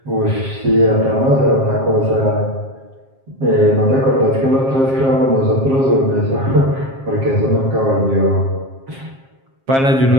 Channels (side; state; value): left; late; 7.5 ms